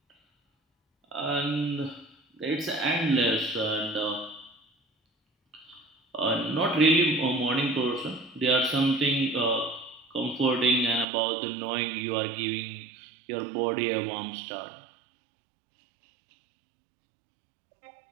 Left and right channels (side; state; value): left; drops out; at 11.1 s